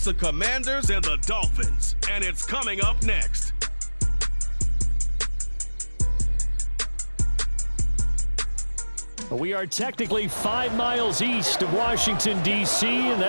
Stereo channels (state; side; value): inverted; both; correlation -1.00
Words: the Commanders and the Dolphins, and it's coming up next. We are technically 5 miles east of Washington, D.C., and